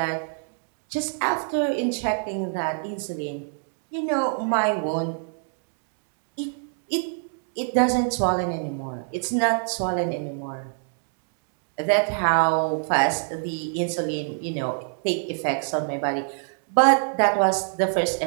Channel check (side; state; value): left; silent; 61 dB below the other